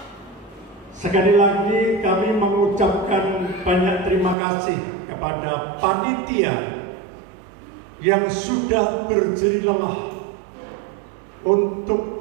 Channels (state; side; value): drops out; left; at 4.4 s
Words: Sekali lagi kami mengucapkan banyak terima kasih kepada panitia yang sudah berjerih lelah untuk